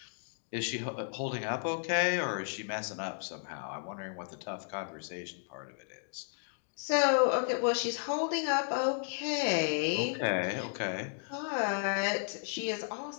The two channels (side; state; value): right; silent; digital silence